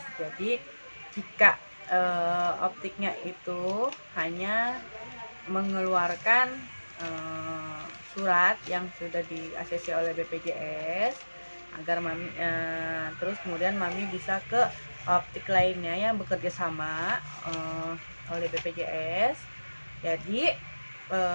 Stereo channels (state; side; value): inverted; both; correlation -1.00